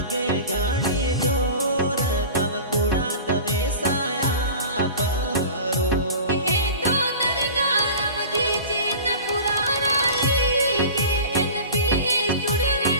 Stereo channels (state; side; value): inverted; both; correlation -0.36